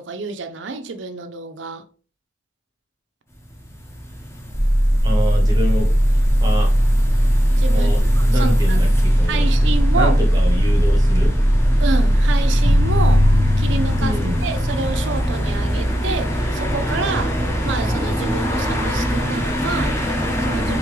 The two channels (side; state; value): both; normal; correlation 0.89